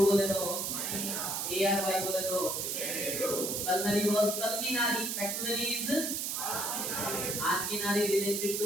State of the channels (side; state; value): right; noise; hiss, 1 dB below the sound